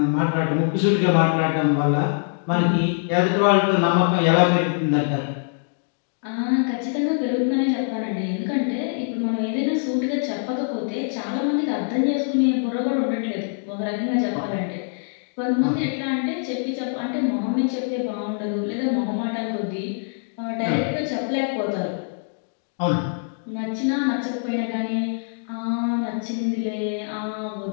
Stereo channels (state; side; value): silent; right; digital silence